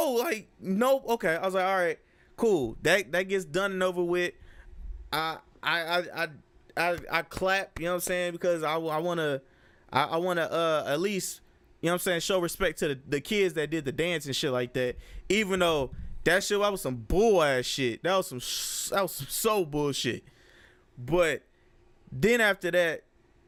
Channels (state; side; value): identical; both; correlation 1.00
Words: like, nope. Okay, I was like, all right, cool. That gets done and over with. I clap. You know what I'm saying? Because I wanna at least, you know what I'm saying, show respect to the kids that did the dance and shit like that. Even though that was some bull ass shit. That was some so bullshit. But then after that,